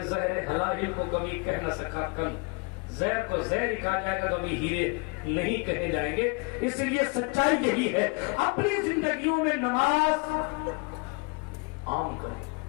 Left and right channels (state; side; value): quieter; right; 32.2 dB